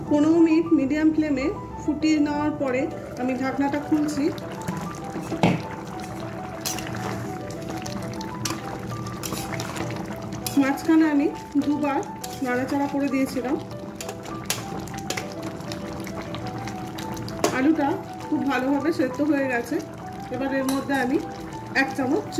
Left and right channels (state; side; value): identical; both; correlation 1.00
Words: 15 মিনিট মিডিয়াম ফ্লেমে ফুটিয়ে নেওয়ার পরে আমি ঢাকনাটা খুলছি। মাঝখানে আমি দুবার নাড়াচাড়া করে দিয়েছিলাম। আলুটা খুব ভালোভাবে সেদ্ধ হয়ে গেছে। এবার এর মধ্যে আমি 1 চামচ